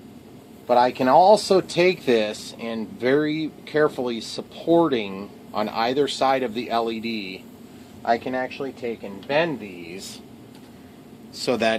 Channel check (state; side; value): identical; both; correlation 1.00